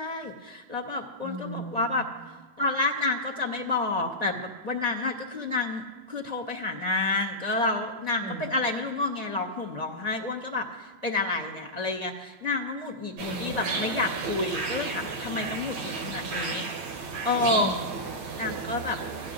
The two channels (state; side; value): late; left; 9.3 ms